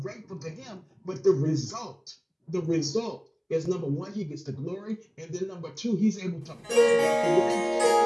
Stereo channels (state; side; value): identical; both; correlation 1.00